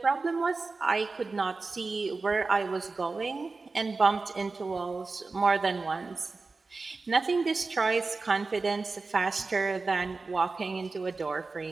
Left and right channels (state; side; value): quieter; left; 3.9 dB